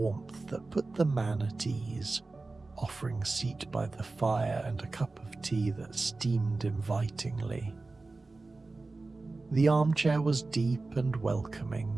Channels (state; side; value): quieter; left; 3.5 dB